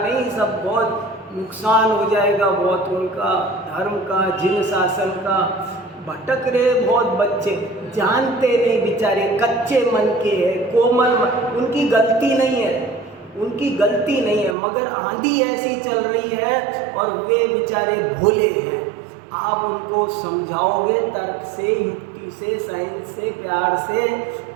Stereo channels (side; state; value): left; drops out; at 14.6 s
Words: सब बहुत नुकसान हो जाएगा बहुत उनका, धर्म का, जिन शासन का। भटक रहे बहुत बच्चे, जानते नहीं बेचारे, कच्चे मन के हैं, कोमल, उनकी गलती नहीं है, मगर आंधी ऐसी चल रही है और वे बेचारे भोले हैं। आप उनको समझाओगे तर्क से, युक्ति से, साइंस से, प्यार से,